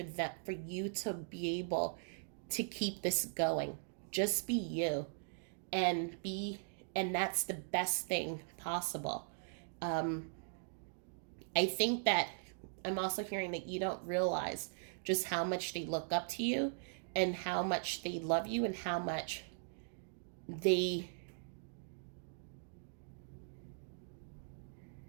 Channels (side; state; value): left; silent; digital silence